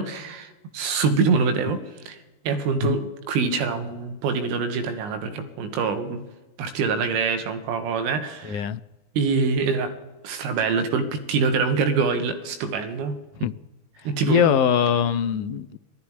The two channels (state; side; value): late; left; 19 ms